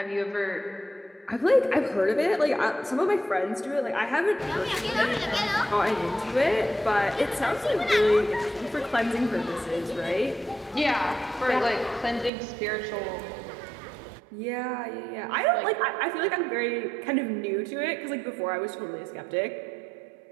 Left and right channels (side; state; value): left; drops out; at 12.3 s